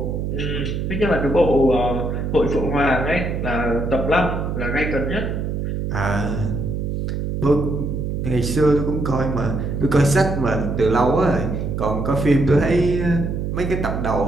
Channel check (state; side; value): noise; right; hum, 2 dB below the sound